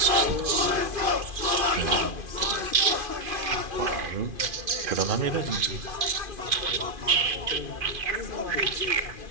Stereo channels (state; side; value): late; left; 2.5 ms